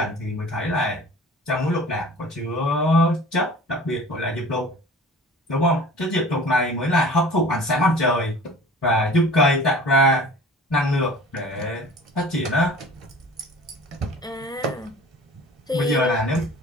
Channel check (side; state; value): both; normal; correlation 0.43